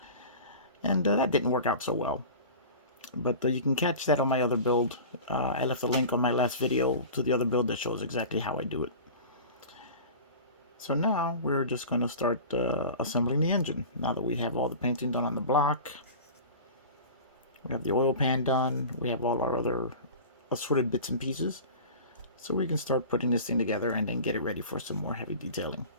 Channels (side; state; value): both; inverted; correlation -0.36